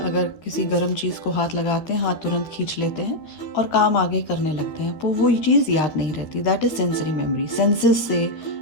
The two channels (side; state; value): right; late; 13 ms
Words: अगर किसी गर्म चीज़ को हाथ लगाते हैं, हाथ तुरंत खींच लेते हैं और काम आगे करने लगते हैं, तो वो चीज़ याद नहीं रहती। That is sensory memory. Senses से